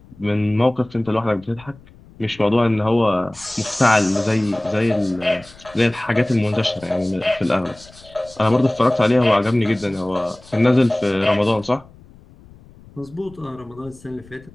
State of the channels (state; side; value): noise; left; rumble, 24 dB below the sound